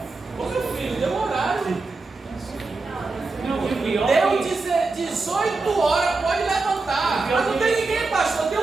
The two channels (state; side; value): quieter; left; 3.7 dB